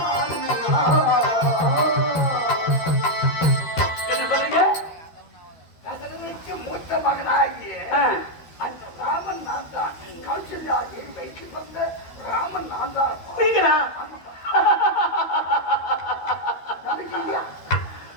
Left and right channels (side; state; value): right; late; 13 ms